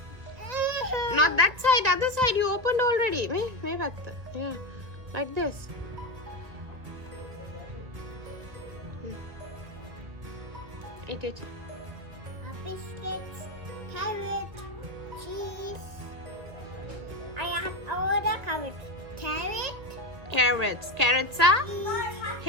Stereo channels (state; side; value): late; left; 1.6 ms